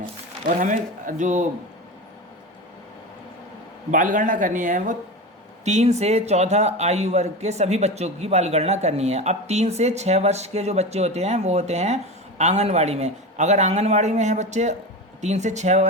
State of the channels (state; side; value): normal; both; correlation 0.25